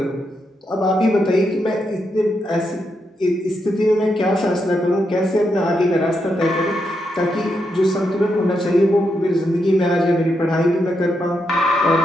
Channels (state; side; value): normal; both; correlation 0.82